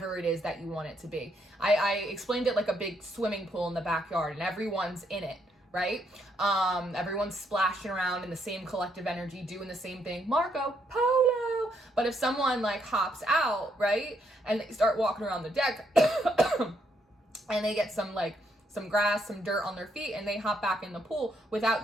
it is that you want it to be. I explained it like a big swimming pool in the backyard, and everyone's in it, right? Everyone's splashing around in the same collective energy, doing the same thing, Marco Polo. But if someone like hops out, right, and they start walking around the deck and they get some grass, some dirt on their feet, and they hop back in the pool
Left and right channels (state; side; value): normal; both; correlation 0.74